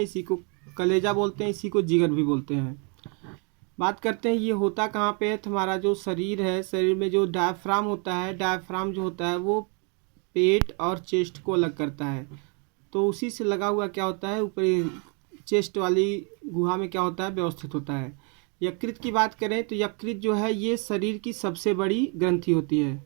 इसी को कलेजा बोलते हैं, इसी को जिगर भी बोलते हैं। बात करते हैं ये होता कहाँ पे है। तो हमारा जो शरीर है, शरीर में जो डायफ्राम होता है, डायफ्राम जो होता है वो पेट और चेस्ट को अलग करता है। तो उसी से लगा हुआ क्या होता है, ऊपर चेस्ट वाली गुहा में क्या होता है, व्यवस्थित होता है। यकृत की बात करें तो यकृत जो है ये शरीर की सबसे बड़ी ग्रंथि होती है।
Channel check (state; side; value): quieter; left; 36.0 dB